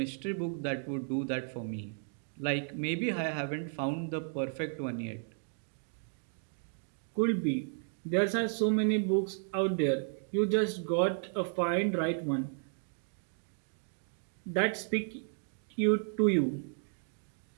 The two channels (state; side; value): silent; left; 55 dB below the other